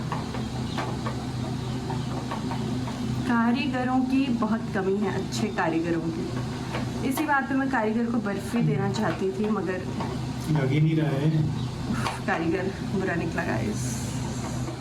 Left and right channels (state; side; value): identical; both; correlation 1.00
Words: कारीगरों की बहुत कमी है, अच्छे कारीगरों की। इसी बात पे मैं कारीगर को बर्फी देना चाहती थी, मगर लग ही नहीं रहा है। कारीगर बुरा निकला गाइस।